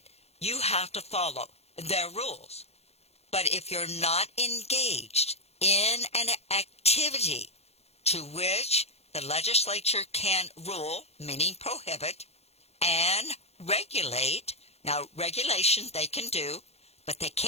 you have to follow their rules. But if you're not engaged in an activity to which the legislature can rule, meaning prohibit, and regulate, now regulation they can do, but they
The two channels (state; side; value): late; right; 0.30 ms